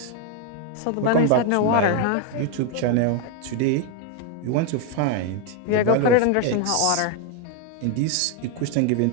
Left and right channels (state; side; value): different; both; correlation 0.01